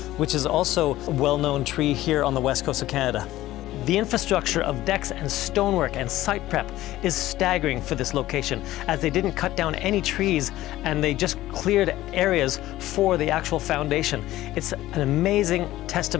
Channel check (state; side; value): quieter; right; 15.5 dB